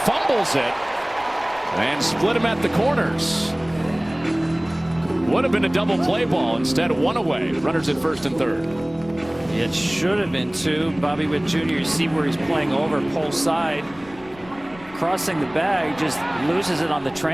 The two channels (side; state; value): left; noise; rumble, 22 dB below the sound